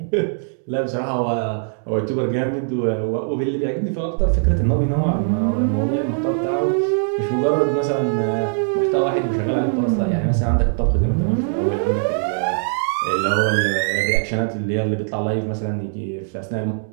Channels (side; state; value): left; silent; digital silence